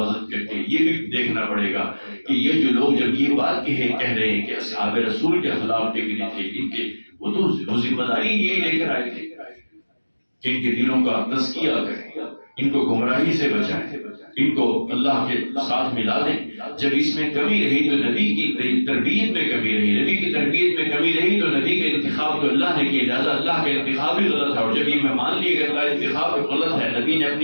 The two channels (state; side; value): inverted; both; correlation -1.00